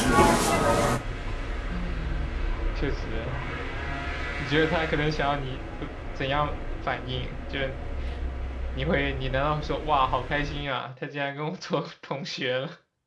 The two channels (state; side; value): identical; both; correlation 1.00